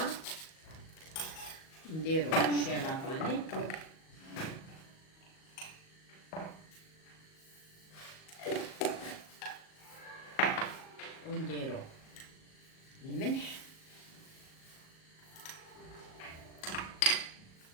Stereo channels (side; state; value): right; late; 38 ms